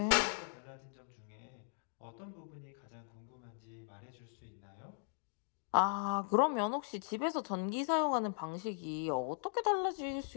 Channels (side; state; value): right; silent; digital silence